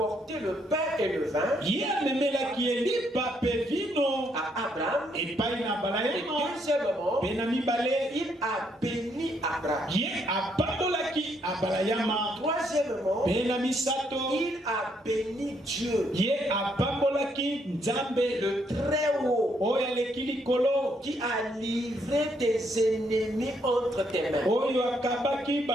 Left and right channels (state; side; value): normal; both; correlation 0.73